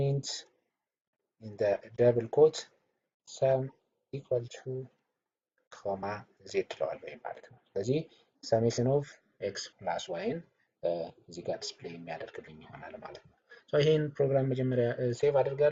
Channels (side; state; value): both; identical; correlation 1.00